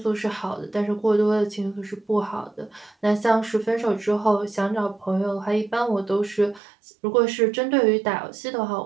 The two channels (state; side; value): drops out; left; at 6.6 s